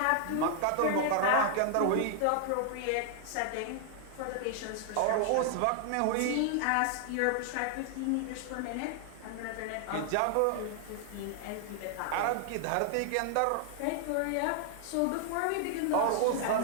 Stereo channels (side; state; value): both; different; correlation 0.00